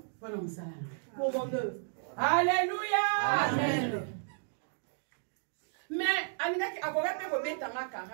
pour mon œuvre. Alléluia. Amen.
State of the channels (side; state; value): left; silent; digital silence